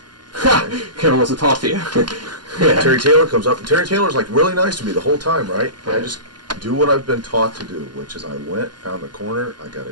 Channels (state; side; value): late; left; 0.71 ms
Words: Kevin wants to talk to you. Yeah. Terry Taylor comes up, and Terry Taylor's like really nice to me the whole time, right? And I just do what I've been taught to do, which is I went, found a corner, I got